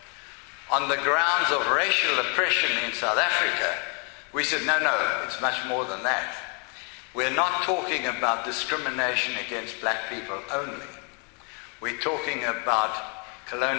on the grounds of racial oppression in South Africa, we said, no, it's much more than that. We're not talking about discrimination against black people only. We're talking about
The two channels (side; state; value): right; quieter; 36.6 dB